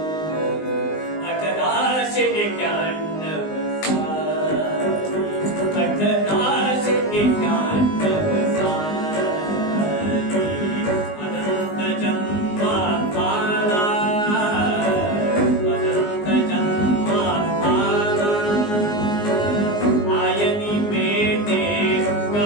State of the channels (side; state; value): right; late; 19 ms